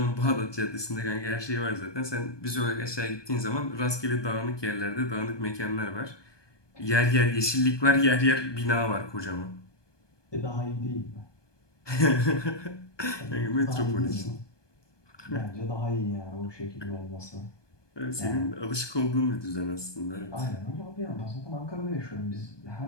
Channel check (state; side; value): late; right; 1.2 ms